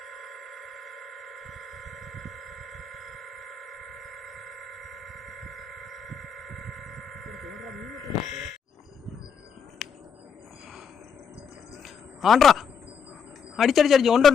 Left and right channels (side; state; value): right; quieter; 6.4 dB